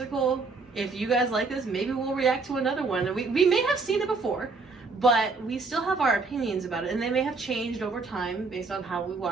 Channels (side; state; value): left; quieter; 4.1 dB